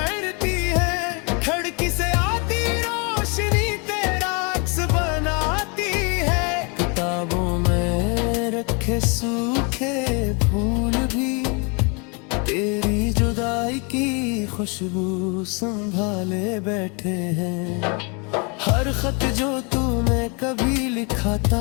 है, खिड़की से आती रोशनी तेरा अक्स बनाती है। किताबों में रखे सूखे फूल भी तेरी जुदाई की खुशबू संभाले बैठे हैं। हर खत जो तूने कभी लिखा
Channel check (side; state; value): right; quieter; 33.2 dB